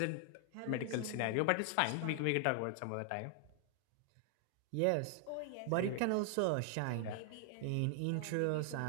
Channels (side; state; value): both; different; correlation 0.00